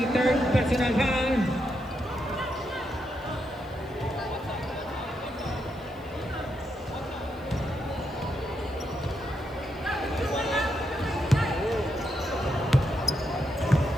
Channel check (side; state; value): left; noise; hiss, 29 dB below the sound